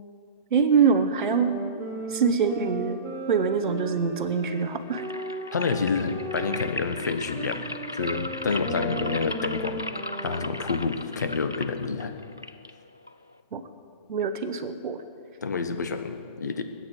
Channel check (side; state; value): both; inverted; correlation -0.35